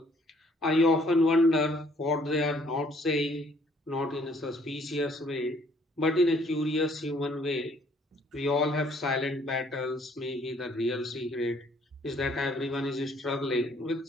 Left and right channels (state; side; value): normal; both; correlation 0.62